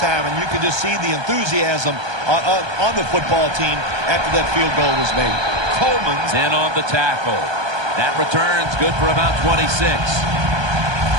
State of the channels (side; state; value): left; late; 1.2 ms